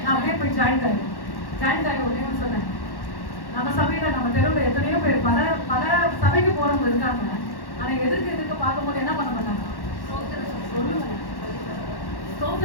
நான் அப்படியே போய் ஜாயிண்ட் ஆகி உடனே சொன்னேன், நம்ம சபையில நம்ம தெருவில் எத்தனையோ பேர் பல சபைக்கு போறவங்க இருக்காங்க. ஆனா எதுக்கு பார்க்கும்போது என்ன பண்ண மாட்டாங்க? சொல்லுங்க,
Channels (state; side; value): late; right; 1.1 ms